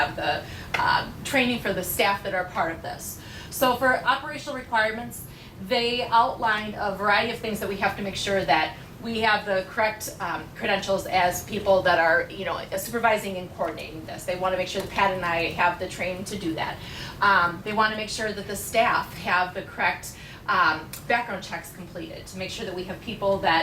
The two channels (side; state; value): both; identical; correlation 1.00